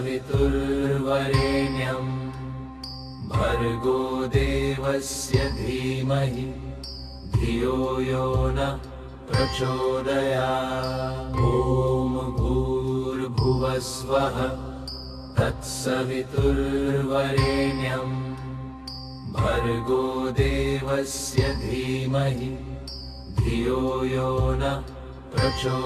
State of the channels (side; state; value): both; identical; correlation 1.00